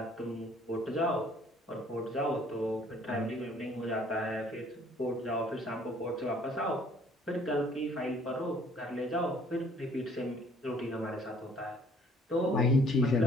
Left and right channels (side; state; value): both; normal; correlation 0.58